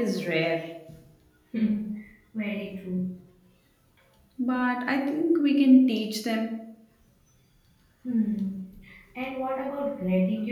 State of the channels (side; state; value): both; identical; correlation 1.00